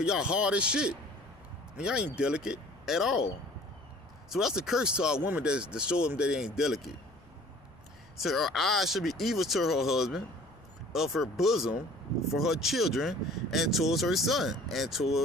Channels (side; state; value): left; noise; rumble, 28 dB below the sound